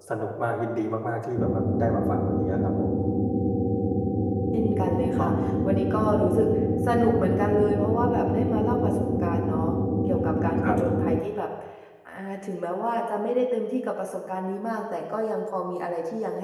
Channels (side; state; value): both; identical; correlation 1.00